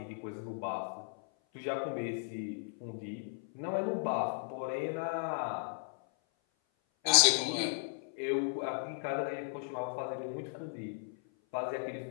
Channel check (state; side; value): silent; right; 54 dB below the other